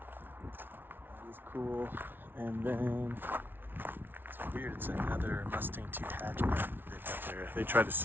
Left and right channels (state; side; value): late; left; 0.10 ms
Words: That is cool. And then it's weird, it's another Mustang 2 hatchback they've got there. They tried to